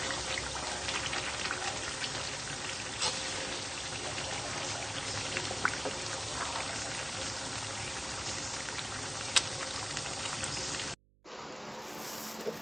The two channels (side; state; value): right; noise; hum, 30 dB below the sound